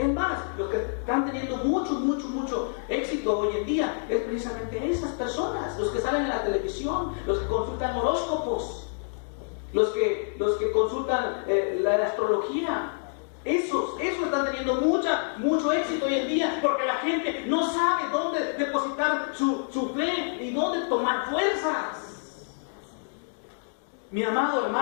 más, los que están teniendo mucho éxito hoy en día es precisamente esas personas, los que salen en la televisión, los que consultan horóscopos, los que consultan la astrología. Esos están teniendo mucho éxito hoy en día, porque la gente no sabe dónde depositar su fe y dónde tomar fuerzas. Mi amado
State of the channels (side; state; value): right; silent; digital silence